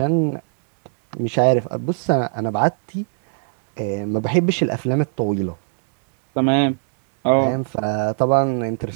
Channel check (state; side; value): silent; left; 66 dB below the other